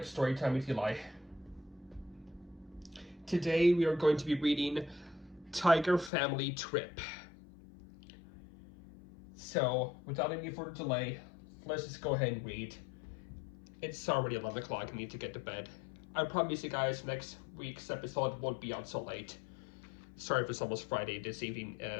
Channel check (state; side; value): drops out; right; at 6.1 s